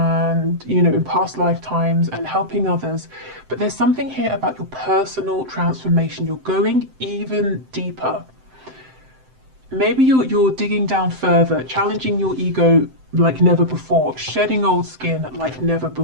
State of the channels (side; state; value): left; late; 7.8 ms